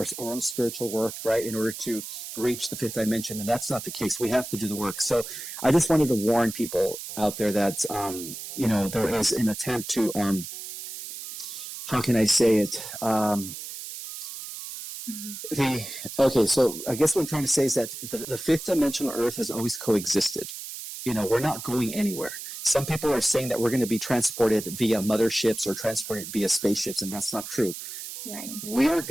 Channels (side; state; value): right; noise; hiss, 9 dB below the sound